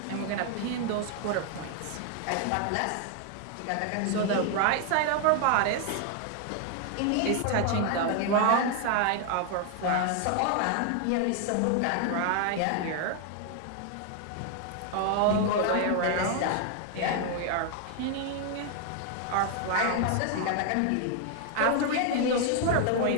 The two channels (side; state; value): both; different; correlation 0.00